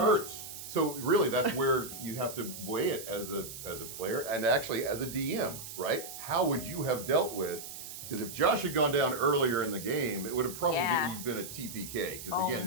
hurts. So really, that's where you have to weigh it as a player and actually as a DM, right? How would you have dealt with? Because if Josh had gone down earlier in the game, it would have probably Yeah. been a TPK. Because Oh,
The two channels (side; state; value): right; noise; hiss, 11 dB below the sound